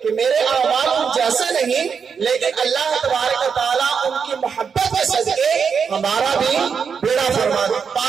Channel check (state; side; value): quieter; left; 6.3 dB